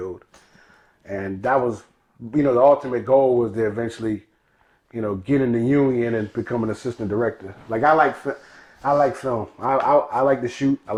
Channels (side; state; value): both; identical; correlation 1.00